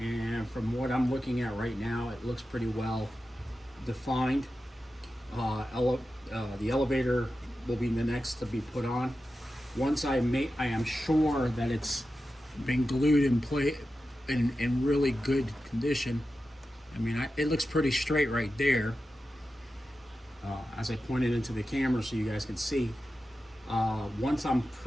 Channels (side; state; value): both; normal; correlation 0.92